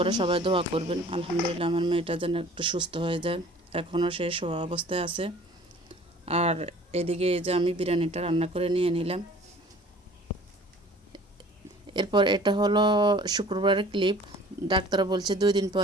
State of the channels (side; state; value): both; normal; correlation 0.49